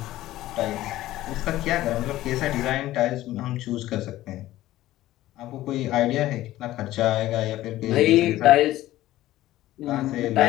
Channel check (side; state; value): right; quieter; 15.3 dB